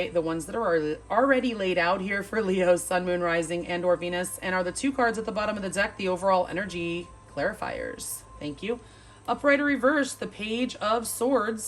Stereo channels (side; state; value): both; identical; correlation 1.00